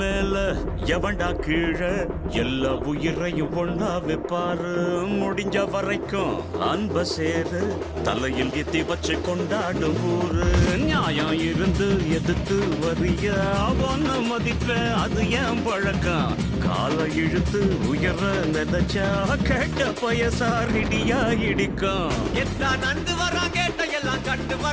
எவன்டா கீழே எல்லா உயிரையும் ஒண்ணா வைப்பாரு. முடிஞ்ச வரைக்கும் அன்ப சேரு தலையில் எத்தி வச்சு கொண்டாடும் ஊரு. நியாயம் இருந்து எதிர்த்து வரிய அவன மதிப்ப அது ஏன் பழக்கம். காலை இழுத்து உயர நினைச்சா கேட்ட பயசாரிடியா இடிக்கும். எத்தான் நந்து வரான் கேட்ட எல்லாம் கண்டு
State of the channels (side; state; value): both; identical; correlation 1.00